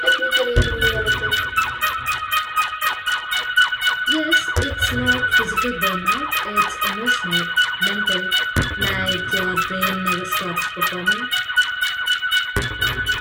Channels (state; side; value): identical; both; correlation 1.00